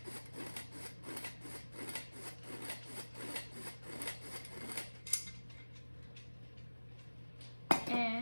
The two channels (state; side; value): inverted; both; correlation -1.00